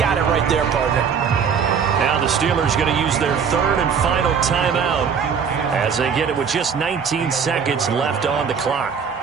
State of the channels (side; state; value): left; quieter; 6.7 dB